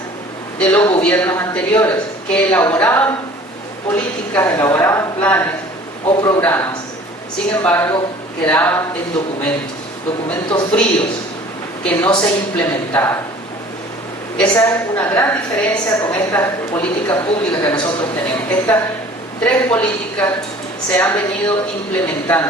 de los gobiernos anteriores que elaboraban políticas, elaboraban planes o programas. Sin embargo, quedaban en documentos fríos que no se implementaban. Esa es una gran diferencia con estas políticas públicas que nosotros tenemos. Estas tres políticas se han venido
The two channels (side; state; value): both; normal; correlation 0.48